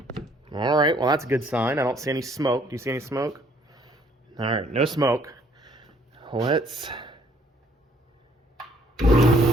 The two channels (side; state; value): both; normal; correlation 0.63